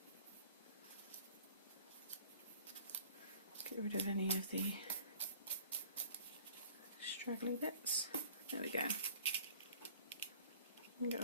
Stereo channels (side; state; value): both; inverted; correlation -0.51